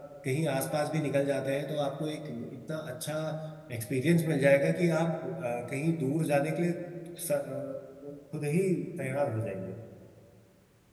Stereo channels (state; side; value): identical; both; correlation 1.00